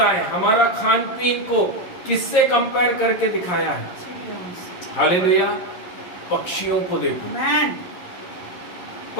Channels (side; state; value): right; late; 11 ms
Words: हमारा खान पीन को किससे कंपेयर करके दिखाया है? हालेलुया। पक्षियों को देखो, आमेन।